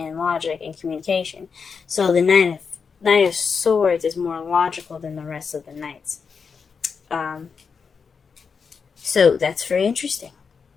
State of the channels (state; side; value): quieter; right; 5.7 dB